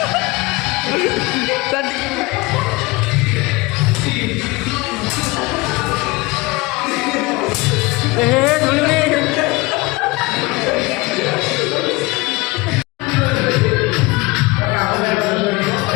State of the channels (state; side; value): quieter; right; 22.9 dB